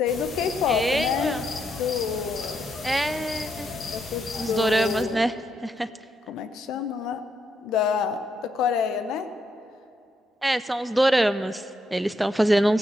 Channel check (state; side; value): normal; both; correlation 0.78